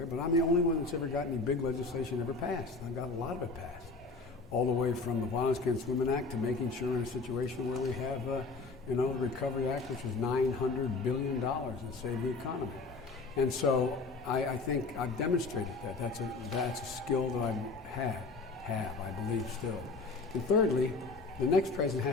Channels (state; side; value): quieter; right; 3.8 dB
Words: but I'm the only one that's ever got any big legislation ever passed. I've got a lot of it passed, all the way from the Violence Against Women Act to making sure in a situation where we have, the Recovery Act, which was $900 billion and saved the economy. And so I think I've demonstrated that. That's a skill that I have, I believe still. And thirdly, the next president